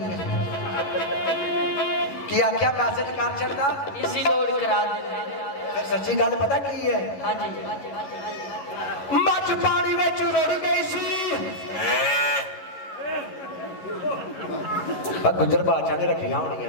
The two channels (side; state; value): right; late; 11 ms